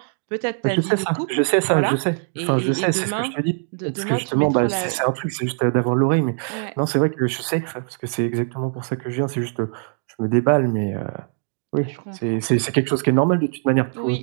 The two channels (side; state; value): left; silent; 57 dB below the other